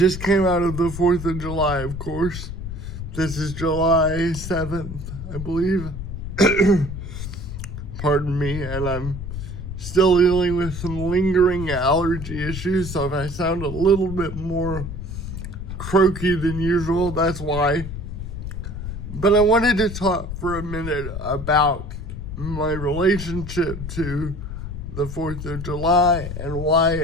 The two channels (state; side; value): noise; left; rumble, 7 dB below the sound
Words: came out of the 4th of July, of course. This is July 7th, I believe. Pardon me, and I'm still dealing with some lingering allergy issues, so if I sound a little bit more croaky than usual, that's why. But I wanted to talk for a minute about my relationship to the 4th of July and why